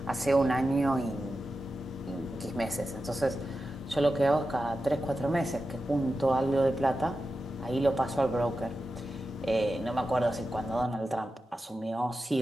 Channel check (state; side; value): normal; both; correlation 0.91